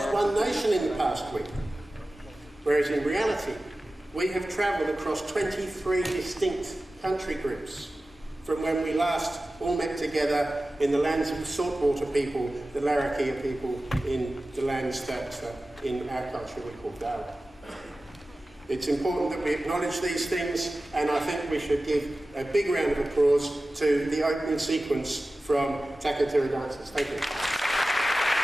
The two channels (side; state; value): both; normal; correlation 0.96